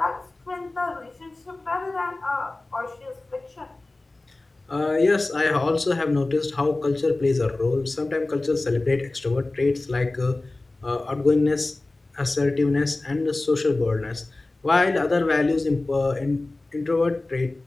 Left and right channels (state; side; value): quieter; right; 3.0 dB